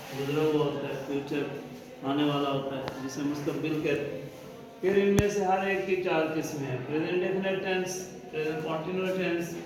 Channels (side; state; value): both; identical; correlation 1.00